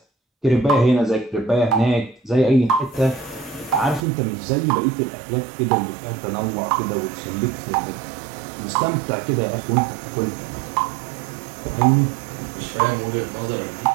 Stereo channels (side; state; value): left; drops out; at 4.0 s